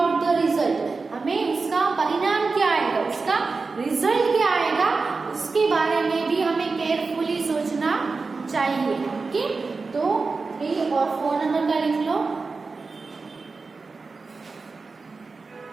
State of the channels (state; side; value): quieter; left; 4.2 dB